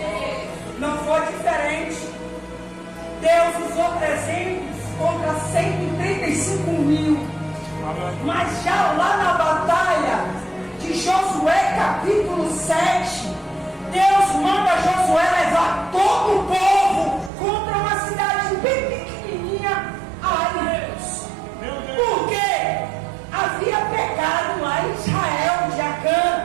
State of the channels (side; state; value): left; drops out; at 17.3 s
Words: Não foi diferente. Deus usou 300 contra 135 mil. Mas já lá na batalha de Josué capítulo 7, Deus manda Josué levar todo o povo contra uma cidade bem pequenininha. Ai, Deus. Por quê? Havia pecado lá em Israel de